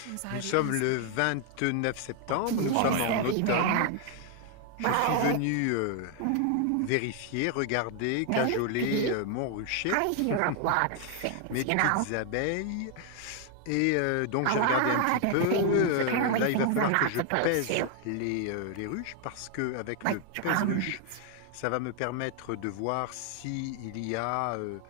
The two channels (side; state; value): both; different; correlation 0.00